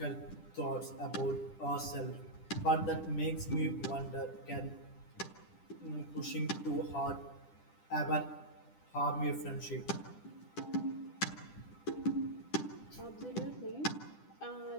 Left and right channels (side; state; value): right; late; 10 ms